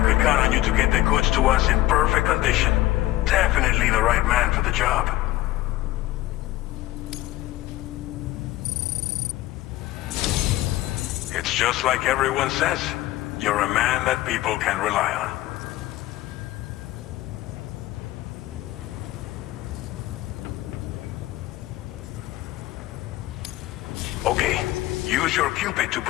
could count on you to get the goods to us in perfect condition. Definitely the right man for the job. It's just like everyone says. You're a man that people can rely on. Okay, use your Cupid to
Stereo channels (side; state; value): right; quieter; 16.3 dB